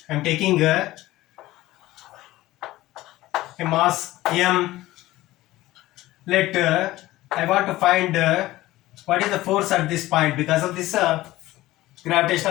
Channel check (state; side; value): quieter; right; 17.0 dB